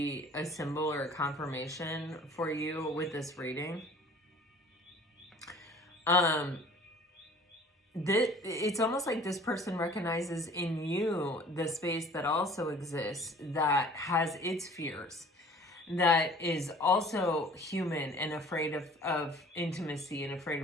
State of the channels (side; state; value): both; normal; correlation 0.49